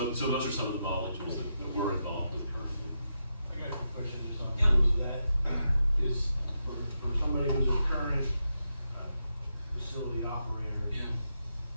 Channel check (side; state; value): both; inverted; correlation -0.85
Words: those are some of the modeling tools that we're involved with currently. I got a question just on Yeah. terms of that. Is for somebody who's a current facility operator